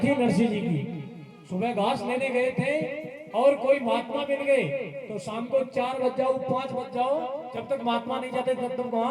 थी नरसिंह जी की। सुबह घास लेने गए थे और कोई महात्मा मिल गए तो शाम को 4 बज जाओ, 5 बज जाओ, जब तक महात्मा नहीं जाते तब तक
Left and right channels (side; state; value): both; identical; correlation 1.00